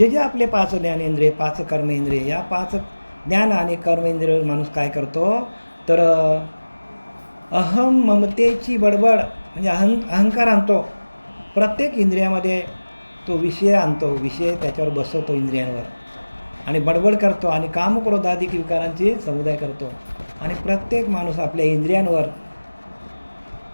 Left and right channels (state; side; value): inverted; both; correlation -1.00